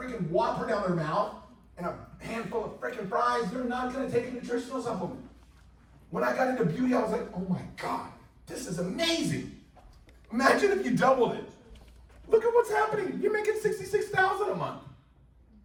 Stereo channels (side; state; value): both; identical; correlation 1.00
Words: Whopper down their mouth and a handful of freaking fries, they're not going to take a nutritional supplement. When I got into beauty, I was like, oh my God, this is amazing. Imagine if you doubled it. Look at what's happening. You're making $66,000 a month.